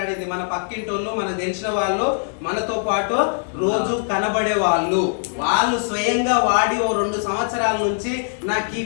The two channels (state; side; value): silent; right; digital silence